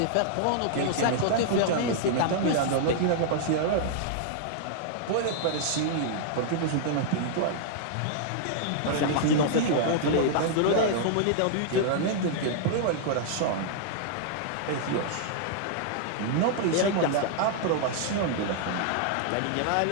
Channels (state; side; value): different; both; correlation -0.01